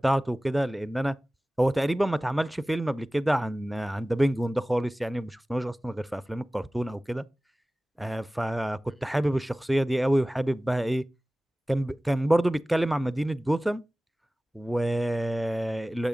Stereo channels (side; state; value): both; normal; correlation 0.98